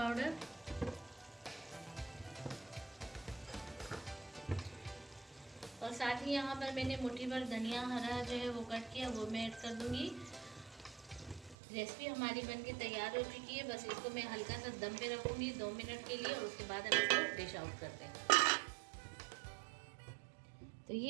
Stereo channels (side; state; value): left; drops out; at 11.6 s